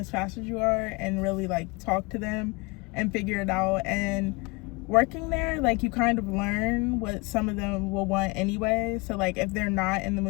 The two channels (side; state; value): right; quieter; 27.4 dB